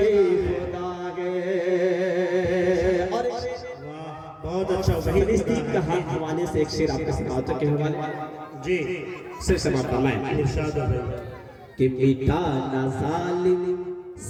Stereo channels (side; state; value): both; identical; correlation 1.00